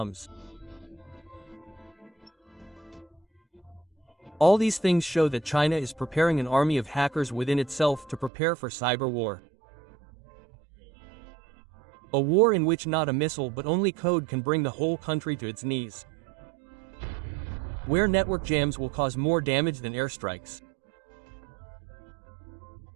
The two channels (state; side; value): drops out; left; at 8.3 s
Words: All these things show that China is preparing an army of hackers within itself to prepare for cyber war. A war in which not a missile but only code can bring the whole country to its knees. Where network jams will cause more damage than airstrikes.